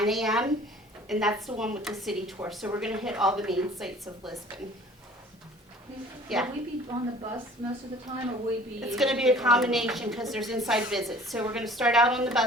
a.m., and that's the one with the city tour, so we're gonna hit all the main sites of Lisbon. Yeah. Will we be on the bus most of the time, or will we be? It's going to be a combination because there's inside visits. So we're going to start out on the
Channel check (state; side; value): normal; both; correlation 0.50